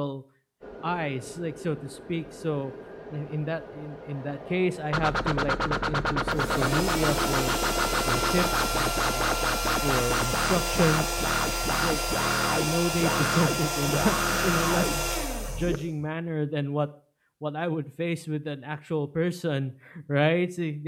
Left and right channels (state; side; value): identical; both; correlation 1.00